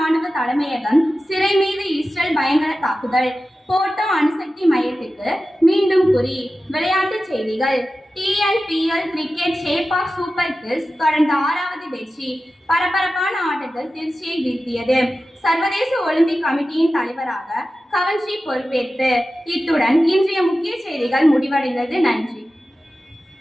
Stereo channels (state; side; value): normal; both; correlation 0.94